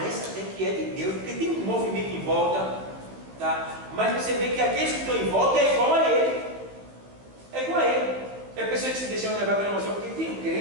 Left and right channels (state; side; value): late; left; 15 ms